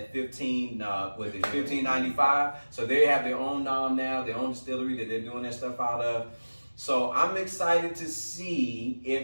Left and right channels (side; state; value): both; inverted; correlation -1.00